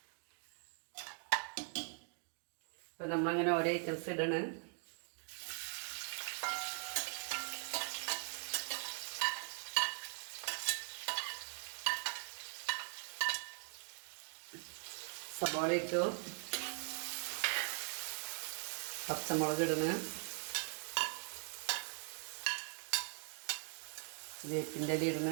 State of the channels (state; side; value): quieter; left; 39.1 dB